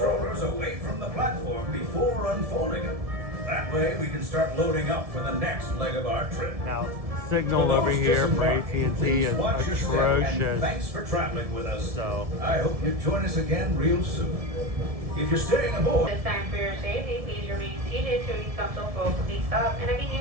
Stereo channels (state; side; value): late; left; 1.7 ms